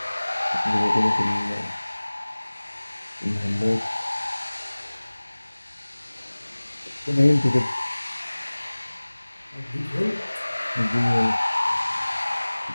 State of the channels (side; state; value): both; inverted; correlation -1.00